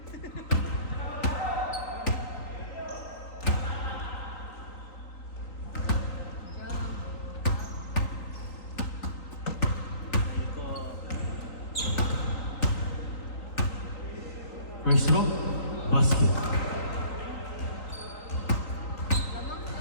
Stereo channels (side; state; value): right; late; 3.9 ms